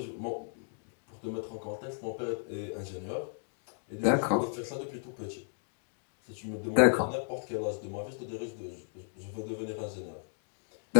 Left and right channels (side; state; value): right; silent; digital silence